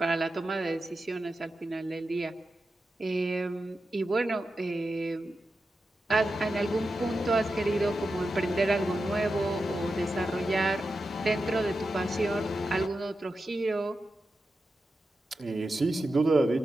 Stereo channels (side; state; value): both; normal; correlation 0.90